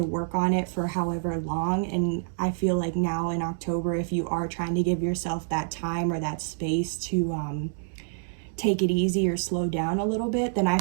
work on it for however long, and I feel like now in October, if you are trying to give yourself that time or that space to take it easy or slow down a little bit, then I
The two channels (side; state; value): left; silent; digital silence